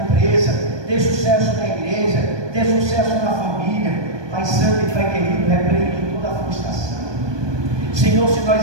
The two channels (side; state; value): left; late; 1.2 ms